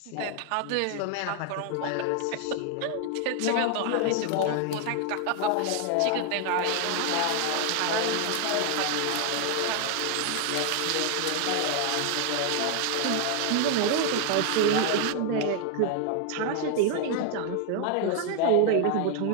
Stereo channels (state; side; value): different; both; correlation 0.00